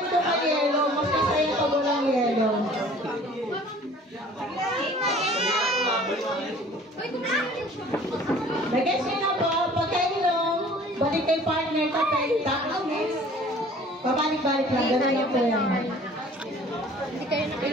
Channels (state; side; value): normal; both; correlation 0.50